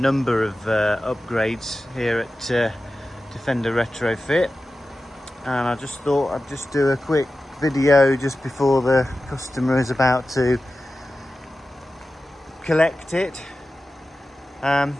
of upgrades here at Defender Retrofit, and I just thought I'd just do a quick video just before the customer is about to collect it.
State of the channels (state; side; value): normal; both; correlation 0.94